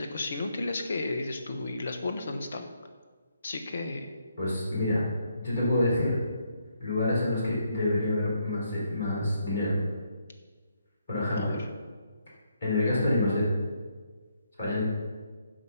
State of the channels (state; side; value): inverted; both; correlation -0.75